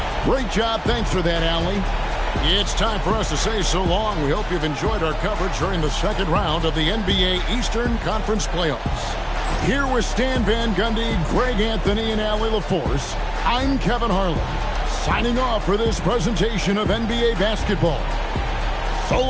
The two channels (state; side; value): identical; both; correlation 1.00